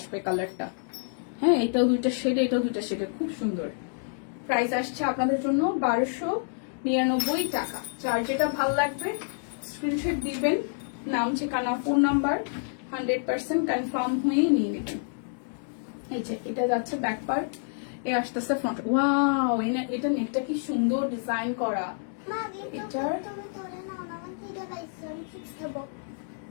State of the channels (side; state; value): right; silent; digital silence